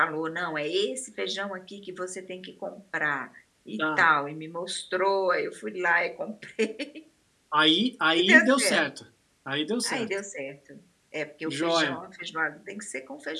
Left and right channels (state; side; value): identical; both; correlation 1.00